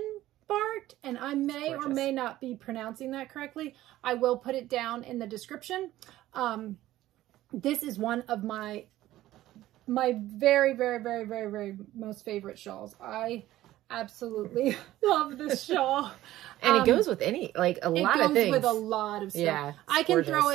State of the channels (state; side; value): quieter; left; 15.0 dB